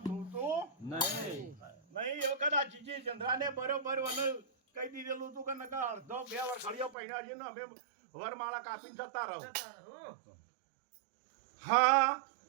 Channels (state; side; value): drops out; left; at 7.0 s